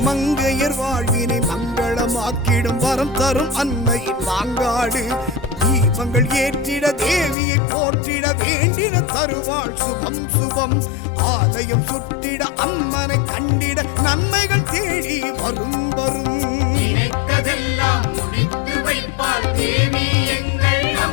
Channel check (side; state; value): right; drops out; at 7.4 s